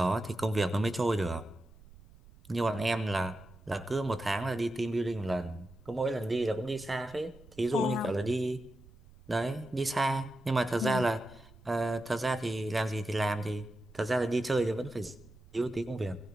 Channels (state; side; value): noise; right; rumble, 23 dB below the sound